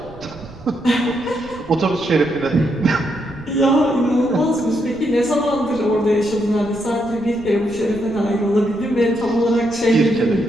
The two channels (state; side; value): noise; right; rumble, 19 dB below the sound